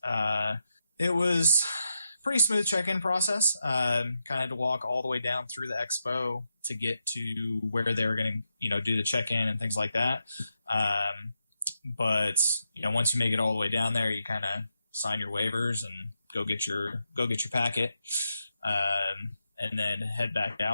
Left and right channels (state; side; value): inverted; both; correlation -0.85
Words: It was pretty smooth check-in process. Kind of had to walk all the way down through the expo to get to where they were going to, do the check-in and things like that. But once you make it all the way down there, you kind of sign your waivers and go get your packet, and then head back